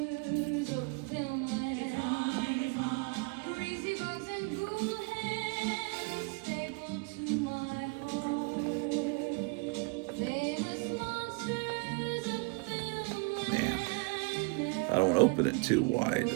Man, I don't want to open it too wide.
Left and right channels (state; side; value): quieter; left; 30.2 dB